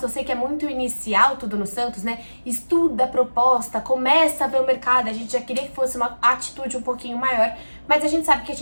eu sei que é muito inicial tudo no Santos, né? Estuda a proposta, começa a ver o mercado, a gente já queria que fosse uma atitude um pouquinho maior, mas a gente sabe que a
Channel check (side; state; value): both; inverted; correlation -1.00